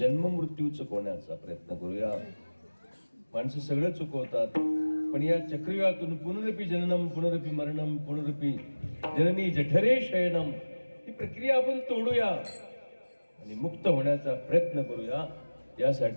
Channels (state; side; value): inverted; both; correlation -1.00